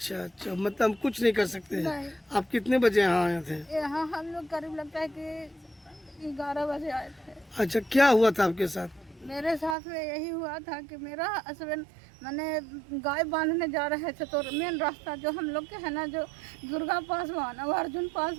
मतलब हम कुछ नहीं कर सकते हैं। नहीं। आप कितने बजे यहाँ आए थे? यहाँ हम लोग करीब लगता है कि 11 बजे आए थे। अच्छा, क्या हुआ था आपके साथ? मेरे साथ में यही हुआ था कि मेरा हस्बैंड मैंने गाय बांधने जा रहे थे तो मेन रास्ता जो हम लोग के है ना, जो दुर्गा पासवान और अर्जुन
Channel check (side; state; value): left; drops out; at 9.8 s